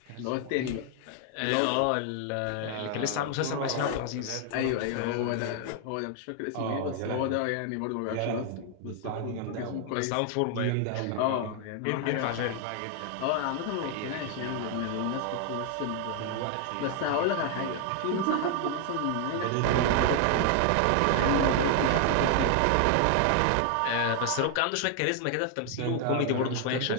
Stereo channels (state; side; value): different; both; correlation 0.00